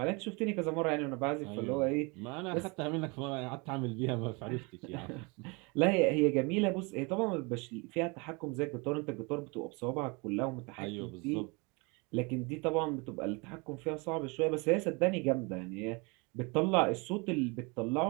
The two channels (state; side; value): quieter; left; 29.1 dB